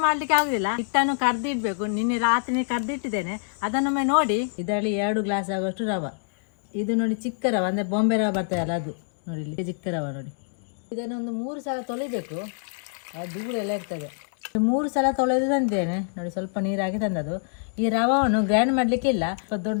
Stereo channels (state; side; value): silent; right; digital silence